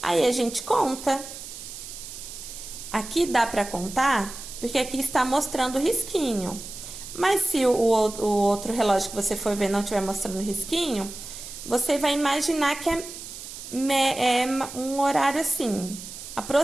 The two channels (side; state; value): right; noise; hiss, 12 dB below the sound